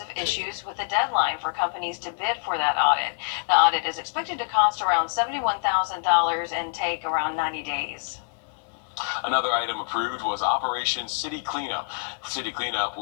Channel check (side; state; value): right; silent; 61 dB below the other